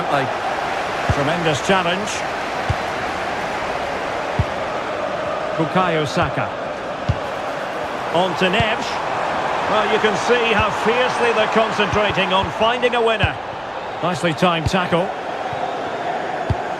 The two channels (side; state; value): both; identical; correlation 1.00